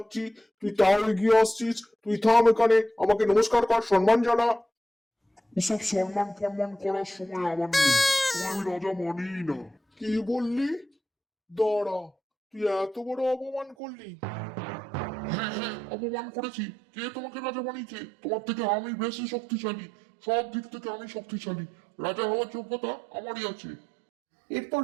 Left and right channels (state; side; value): drops out; left; at 13.8 s